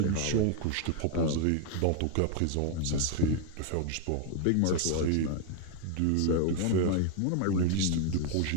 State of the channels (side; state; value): both; different; correlation 0.01